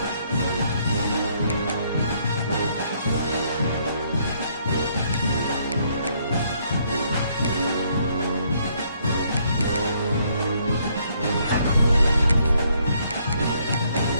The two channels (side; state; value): both; inverted; correlation -0.69